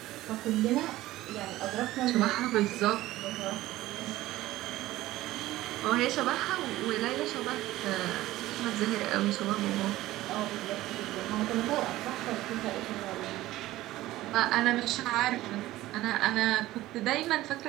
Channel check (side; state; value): left; quieter; 16.3 dB